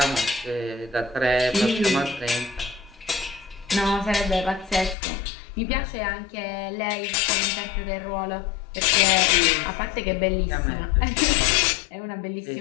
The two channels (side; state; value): right; drops out; at 5.0 s